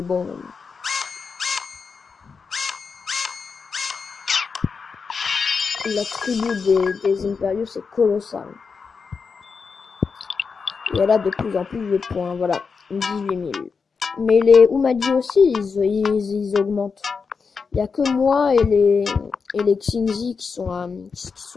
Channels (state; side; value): quieter; right; 5.3 dB